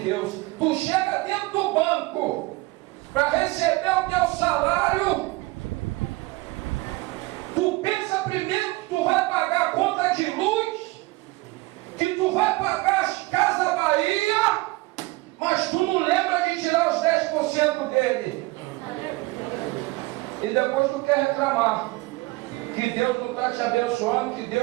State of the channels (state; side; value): quieter; left; 22.2 dB